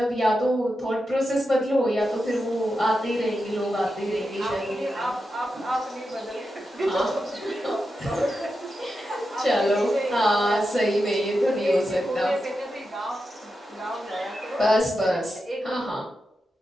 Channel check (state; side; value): normal; both; correlation 0.89